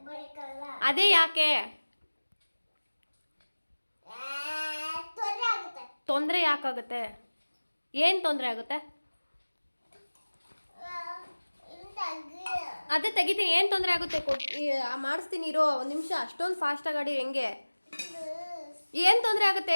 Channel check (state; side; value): inverted; both; correlation -1.00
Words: ಅದೇ ಯಾಕೆ? ತೊಂದರೆ ಯಾಕಾಗುತ್ತೆ? ಏನು ತೊಂದರೆ ಆಗುತ್ತೆ? ಅದೇ ತೆಗಿತೀನಿ. ಏನು ತೊಂದರೆ ಆಗುತ್ತೆ? ಮಾಡಿಸ್ತೀನಿ ಇರೋ ಒಂದು ನಿಮಿಷ. ಅಷ್ಟೊಂದು ಫಾಸ್ಟಾಗಿ ಆಡಿ ಹೆಂಗೆ? ಏನು ತೊಂದರೆ ಆಗುತ್ತೆ